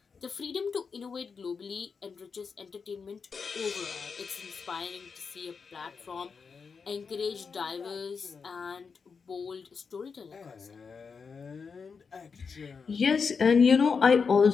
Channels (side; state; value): right; quieter; 5.5 dB